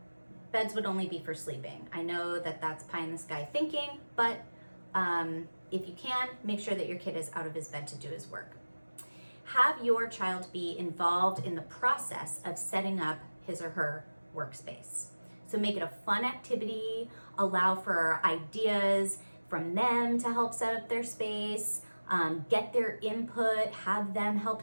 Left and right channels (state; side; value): inverted; both; correlation -1.00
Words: beds would only be for sleeping. I know that that's pie in the sky thinking, but if you can, make sure that your kid is out of his bed to do his work. Have your child be involved in the process of setting up his or her workspace. So make it a fun activity, allow for ideas from them to help set up their space, get their input, have them